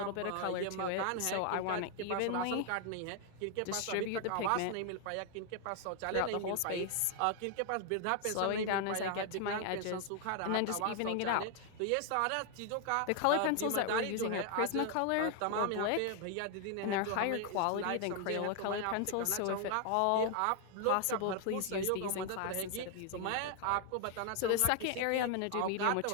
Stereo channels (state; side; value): different; both; correlation 0.00